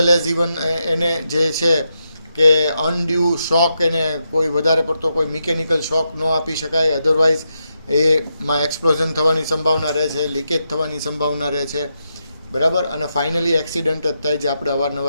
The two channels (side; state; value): both; inverted; correlation -0.84